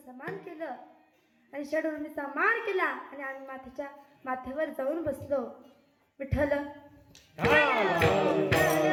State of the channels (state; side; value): identical; both; correlation 1.00